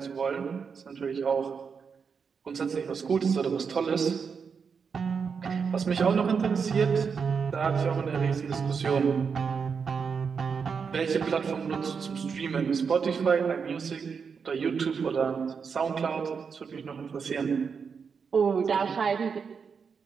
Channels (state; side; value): quieter; left; 6.0 dB